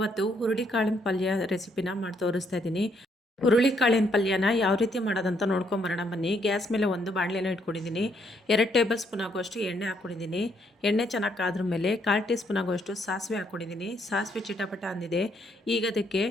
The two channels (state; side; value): normal; both; correlation 0.72